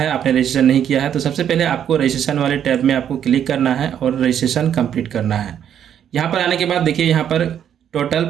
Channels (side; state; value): left; quieter; 9.4 dB